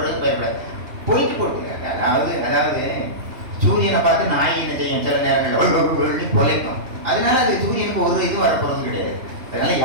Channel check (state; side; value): late; left; 3.0 ms